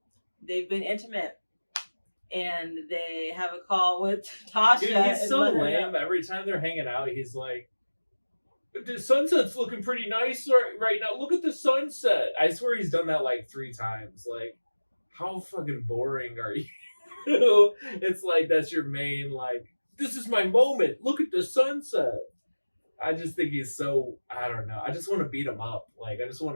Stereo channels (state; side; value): inverted; both; correlation -1.00